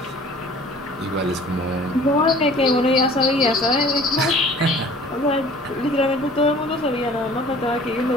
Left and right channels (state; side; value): normal; both; correlation 0.49